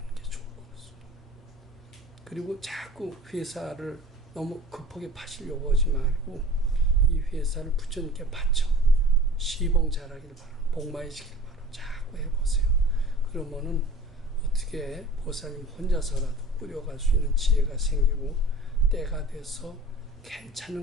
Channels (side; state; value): both; normal; correlation 0.42